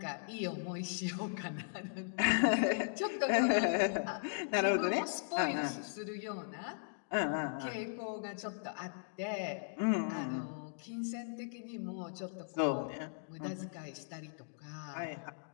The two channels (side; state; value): right; silent; digital silence